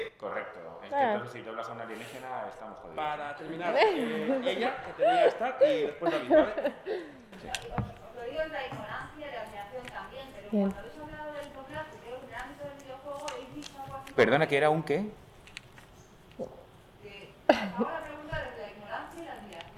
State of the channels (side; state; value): both; identical; correlation 1.00